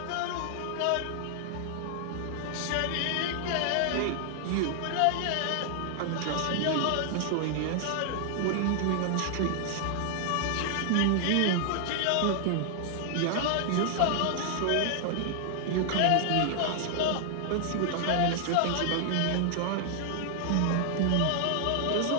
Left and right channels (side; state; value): both; different; correlation 0.00